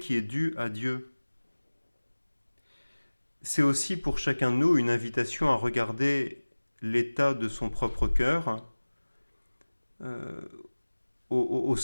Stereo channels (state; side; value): inverted; both; correlation -1.00